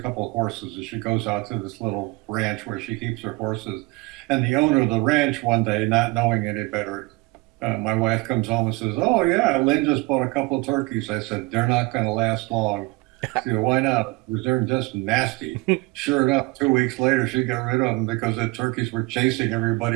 of horses, and she goes out to this little ranch where she keeps her horses. And the owner of the ranch one day, not knowing any better, my wife comes home and says, "Oh yeah, Lynn just bought a couple of turkeys." I said, "They're not going to last long." She said, "Why not?" Because they're just nasty. Sure enough, 2 weeks later, she got rid of them because the turkeys were chasing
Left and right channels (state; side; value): quieter; left; 24.4 dB